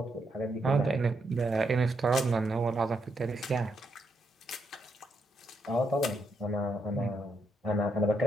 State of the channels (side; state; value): both; normal; correlation 0.79